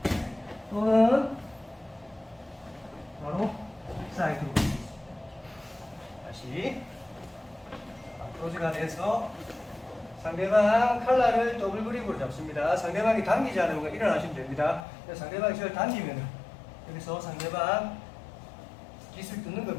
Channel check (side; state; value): right; drops out; at 14.8 s